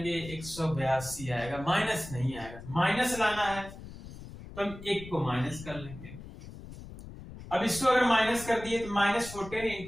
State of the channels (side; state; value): left; noise; rumble, 14 dB below the sound